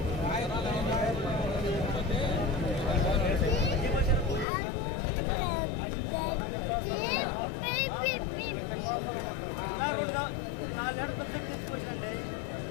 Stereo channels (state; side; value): drops out; right; at 4.5 s